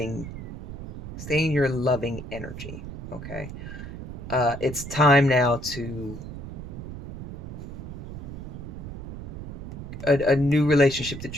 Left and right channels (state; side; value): noise; right; rumble, 10 dB below the sound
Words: energy, okay? It's time now to a new relationship that